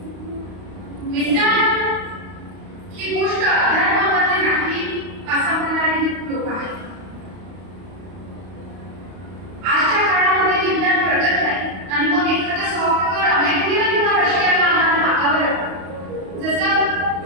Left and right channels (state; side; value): late; left; 32 ms